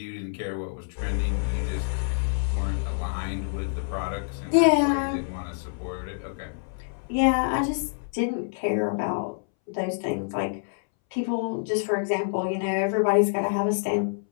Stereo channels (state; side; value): silent; right; 60 dB below the other